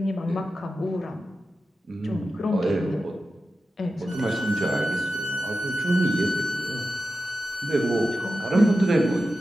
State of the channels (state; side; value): normal; both; correlation 0.92